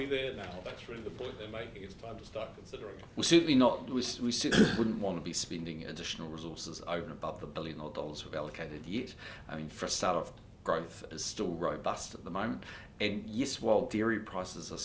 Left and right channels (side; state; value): both; identical; correlation 1.00